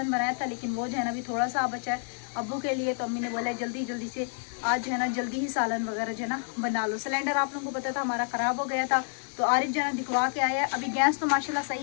बनाया था, लेकिन वो जो है ना अभी थोड़ा सा बचा है अब्बू के लिए, तो अम्मी ने बोला जल्दी जल्दी से आज जो है ना जल्दी ही सालन वगैरह जो है ना बना लो। सिलेंडर आप लोगों को पता था हमारा ख़राब हो गया था, तो आरिफ जो है ना दिखवा के आया है। अभी गैस तो माशाल्लाह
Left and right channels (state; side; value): silent; right; 59 dB below the other